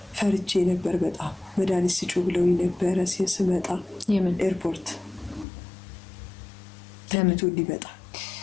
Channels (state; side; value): drops out; right; at 5.5 s